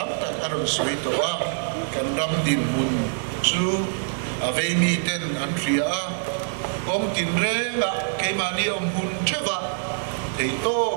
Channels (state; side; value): silent; left; digital silence